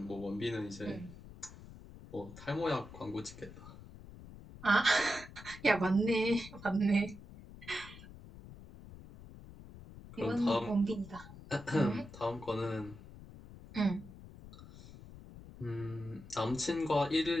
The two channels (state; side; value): noise; left; rumble, 16 dB below the sound